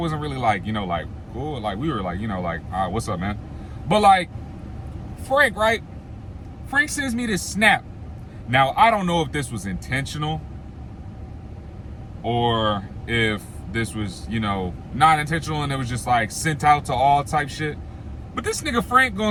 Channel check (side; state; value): both; identical; correlation 1.00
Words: really like, like, cool. Like, we were like, what's up, man? But like, Frank, right? Frank sends me this Snap. Now, I don't know if this was intentional or if this was, not intentional and it was just like sent out to all type shit. But this nigga Frank